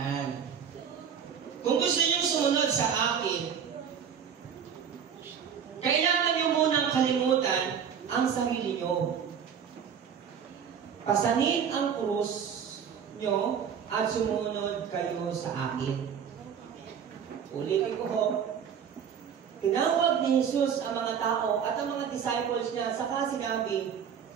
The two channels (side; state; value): left; quieter; 7.7 dB